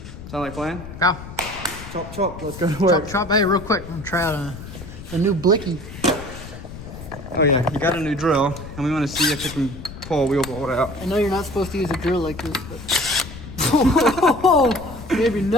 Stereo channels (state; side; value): noise; left; rumble, 13 dB below the sound